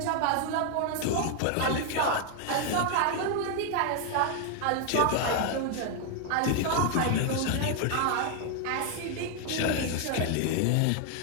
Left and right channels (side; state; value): both; different; correlation 0.00